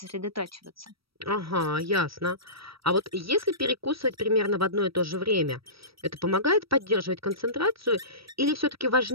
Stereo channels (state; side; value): late; left; 0.75 ms